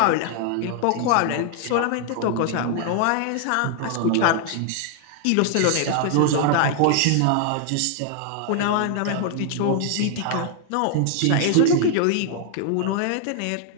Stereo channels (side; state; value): both; different; correlation 0.00